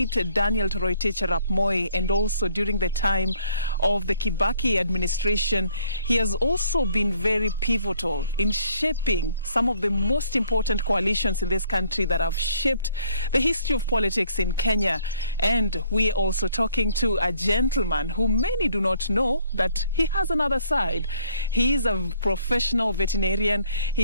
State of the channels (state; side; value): inverted; both; correlation -0.63